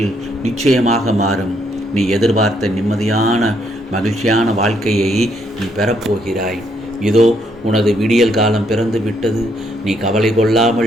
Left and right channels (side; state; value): both; normal; correlation 0.72